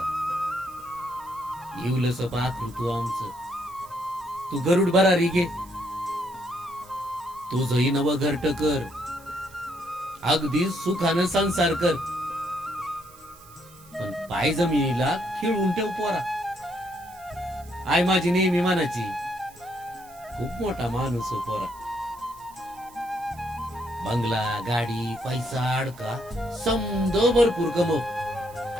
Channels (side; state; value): right; noise; hiss, 24 dB below the sound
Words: येऊलस पाखरू तू आमचं, तू गरुड भरारी घे, तुझही नव घरट कर, अगदी सुखानं संसार कर. पण पाय जमिनीला खिळून ठेव पोरा. आई माझी नेहमी म्हणायची, खूप मोठा माणूस हो पोरा. बंगला गाडी पैसा अडका समद भरपूर कमव,